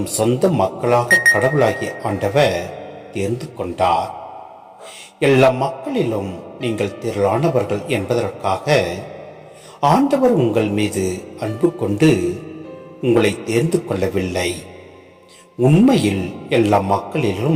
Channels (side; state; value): both; identical; correlation 1.00